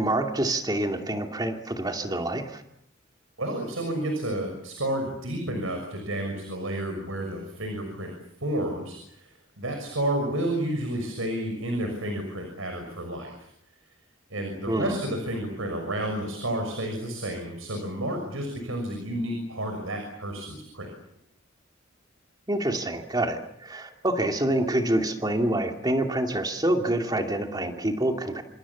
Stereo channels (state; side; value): normal; both; correlation 0.47